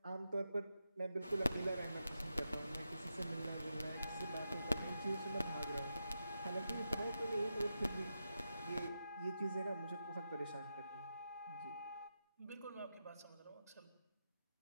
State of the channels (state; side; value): inverted; both; correlation -0.88